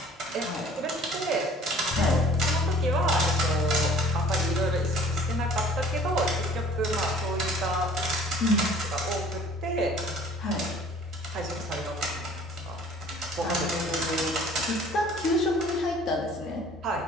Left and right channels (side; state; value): both; normal; correlation 0.51